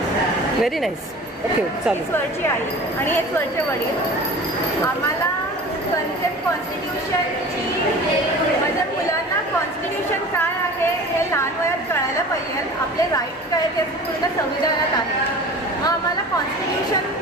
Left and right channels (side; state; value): both; normal; correlation 0.39